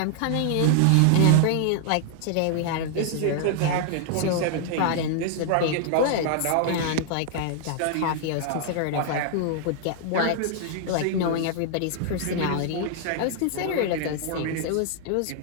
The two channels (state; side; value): different; both; correlation 0.00